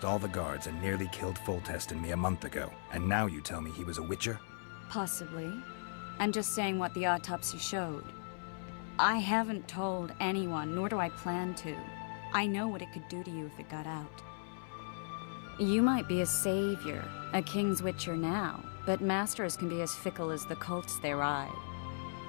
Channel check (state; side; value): silent; right; 53 dB below the other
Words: all the guards and nearly killed Foltest and me a month ago. And now you tell me he was a witcher? Possibly. I'm just saying what the autopsy showed. I haven't told anyone, nor do I plan to. I know what it could do to you if it got out. You might be a savior, a king's witcher now, but masters can be as fickle as the cults they ride.